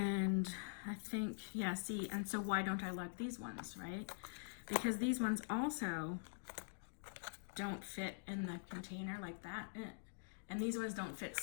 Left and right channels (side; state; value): right; silent; digital silence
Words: I think, yeah, see, and so why don't I like these ones, right? Because these ones also don't fit in the container like that. And these ones don't fit